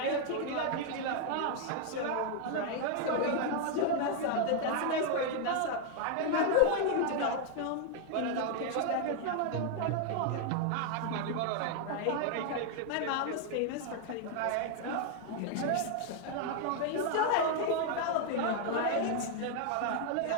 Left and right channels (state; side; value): different; both; correlation 0.00